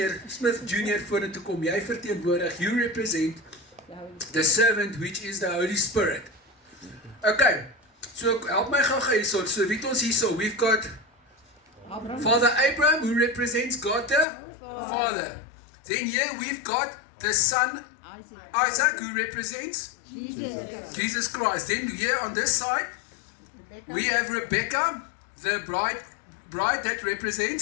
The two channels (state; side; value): drops out; right; at 14.2 s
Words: vorentoe kom, jy verteenwoordig, you represent the servant which is the Holy Spirit. Okay, so help my gou hierso, so wie het ons hierso, we've got Father Abraham who represents God the Father. Then here we've got the son Isaac who represents Jesus Christ. Then here on this side we have Rebecca, the bride that